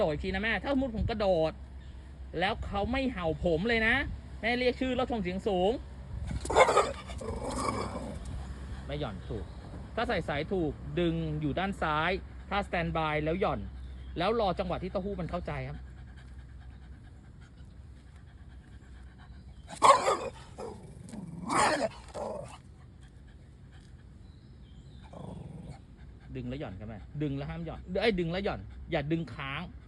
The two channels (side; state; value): both; identical; correlation 1.00